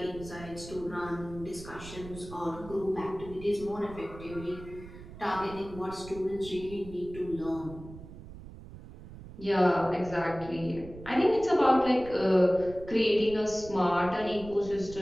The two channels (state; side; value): noise; right; rumble, 15 dB below the sound